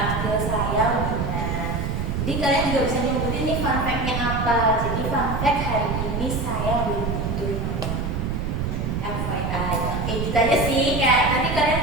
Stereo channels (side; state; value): right; noise; rumble, 2 dB below the sound